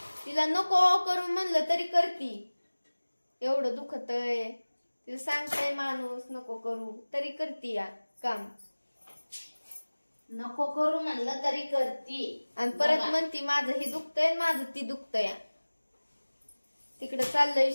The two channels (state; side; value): inverted; both; correlation -1.00